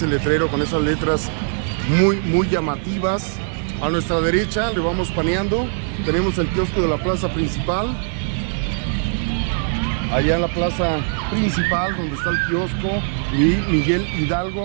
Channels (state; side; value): silent; left; 58 dB below the other